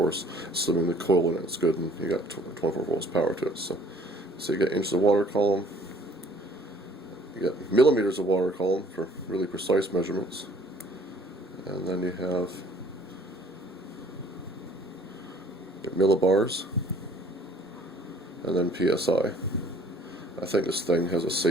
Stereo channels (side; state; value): both; normal; correlation 0.56